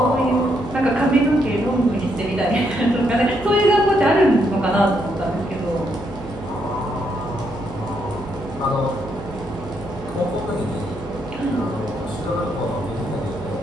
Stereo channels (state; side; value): noise; right; hum, 16 dB below the sound